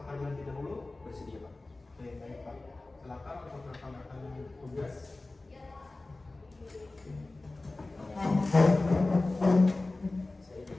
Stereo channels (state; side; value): quieter; right; 3.1 dB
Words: terlebih dahulu? Bersedia Pak. Oke, baik Pak. Silakan untuk rekan-rekan tugas. Saya di